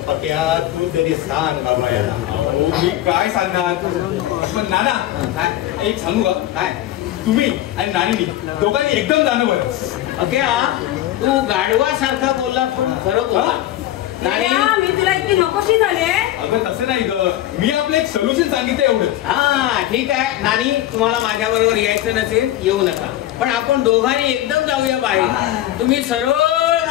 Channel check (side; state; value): right; quieter; 13.7 dB